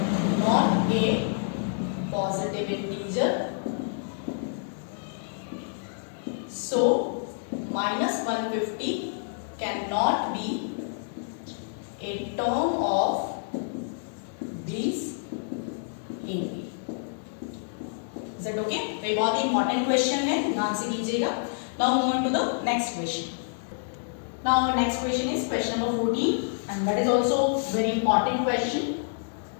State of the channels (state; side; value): silent; right; digital silence